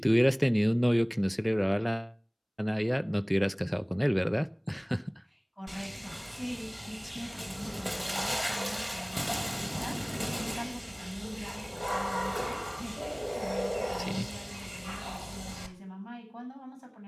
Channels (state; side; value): identical; both; correlation 1.00